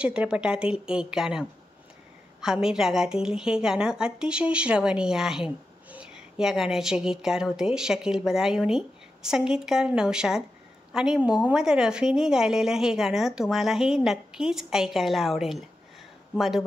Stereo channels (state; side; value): normal; both; correlation 0.90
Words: एक गाणं. हमीर रागातील हे गाणं अतिशय श्रवणीय आहे. या गाण्याचे गीतकार होते शकील बदायुनी, संगीतकार नौशाद आणि मोहम्मद रफीने गायलेलं हे गाणं तुम्हालाही नक्कीच ऐकायला आवडेल.